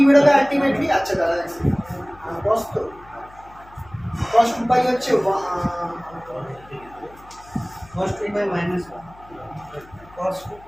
বেরোবে আলটিমেটলি? আচ্ছা দাদা cos তো cos 2 pi হচ্ছে cos 2 by minus 1 cos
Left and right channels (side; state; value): left; noise; hum, 23 dB below the sound